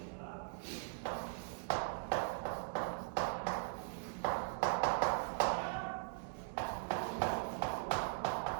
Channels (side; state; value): left; silent; digital silence